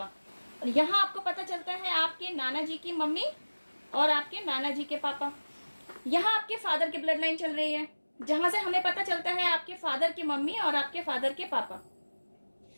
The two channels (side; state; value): both; inverted; correlation -1.00